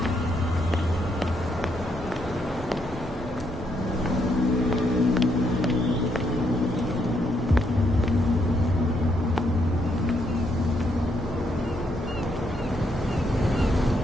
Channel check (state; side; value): normal; both; correlation 0.75